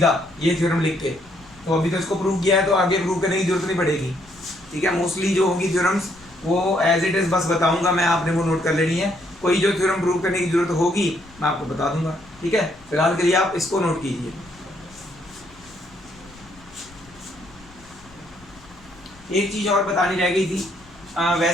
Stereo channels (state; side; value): noise; left; rumble, 25 dB below the sound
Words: ये थ्योरम लिख के। तो अभी तो इसको प्रूव किया है तो आगे प्रूव करने की जरूरत नहीं पड़ेगी। ठीक है। मोस्टली जो होंगी थ्योरम्स वो एज इट इज बस बताऊंगा मैं, आपने वो नोट कर लेनी है। कोई जो थ्योरम प्रूव करने की जरूरत होगी मैं आपको बता दूंगा। ठीक है। फिलहाल के लिए आप इसको नोट कीजिए। एक चीज और बतानी रह गई थी,